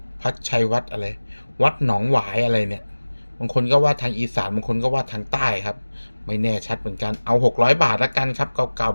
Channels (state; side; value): inverted; both; correlation -1.00